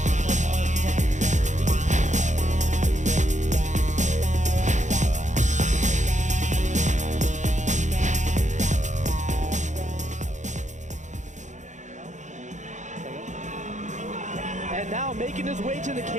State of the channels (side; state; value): left; late; 0.35 ms